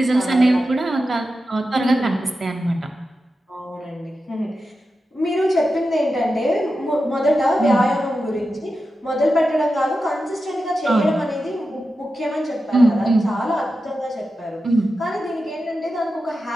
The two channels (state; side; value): normal; both; correlation 0.91